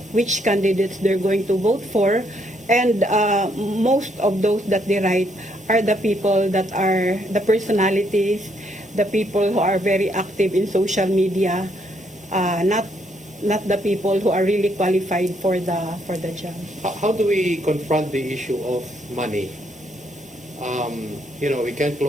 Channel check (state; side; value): normal; both; correlation 0.72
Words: which candidates they're going to vote for, and most of those that they write are the people that are the personalities, the people who are very active in social media, not not the people who are really qualified for the job. How do we confront the issue of money? We can't